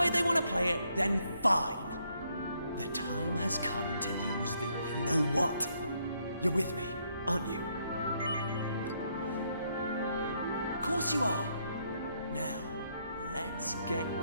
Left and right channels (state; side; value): inverted; both; correlation -0.73